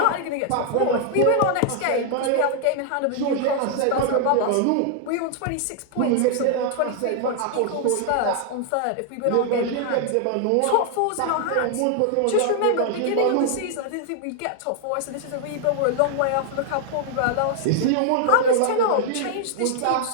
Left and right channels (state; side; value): different; both; correlation 0.00